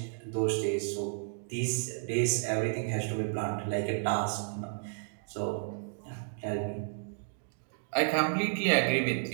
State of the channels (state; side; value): silent; left; digital silence